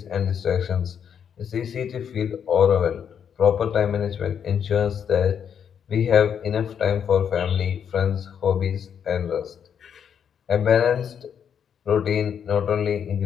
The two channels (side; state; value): right; quieter; 8.0 dB